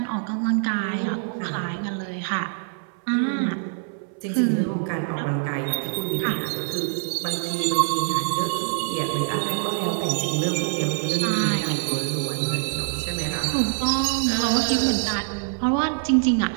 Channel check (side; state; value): left; silent; 61 dB below the other